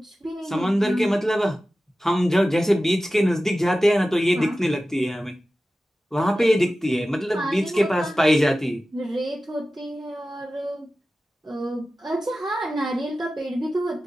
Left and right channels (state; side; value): normal; both; correlation 0.95